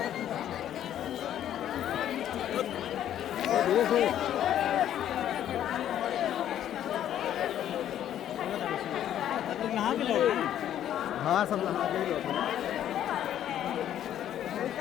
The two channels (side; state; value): right; quieter; 11.0 dB